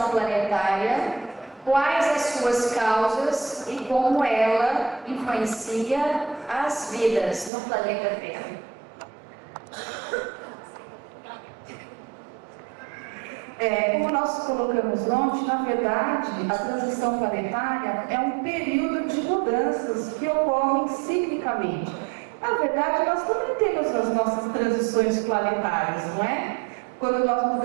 planetária? Quais as suas causas e como ela influencia as vidas no planeta Terra? Como nós colocamos ontem, na verdade, a transição planetária é um período de mudanças que ocorrem ciclicamente. Na verdade, nós também temos as nossas transições planetárias, não é? Quando nós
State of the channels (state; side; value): drops out; left; at 7.5 s